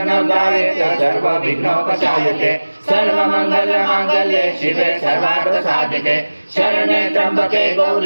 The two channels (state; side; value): inverted; both; correlation -1.00